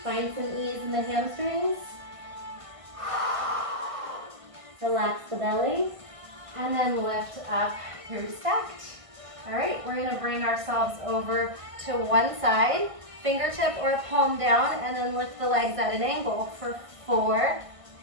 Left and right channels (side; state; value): left; late; 1.5 ms